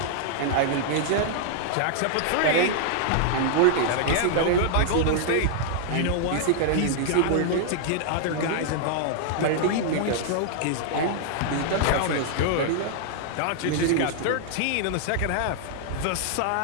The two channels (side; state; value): both; different; correlation -0.01